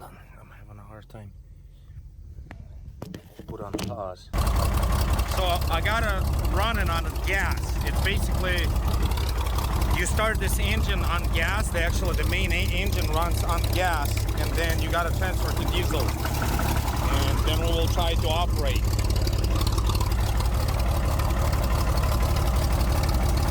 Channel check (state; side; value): identical; both; correlation 1.00